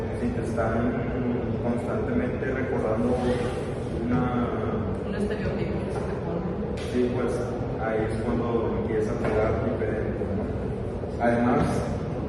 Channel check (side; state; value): both; identical; correlation 1.00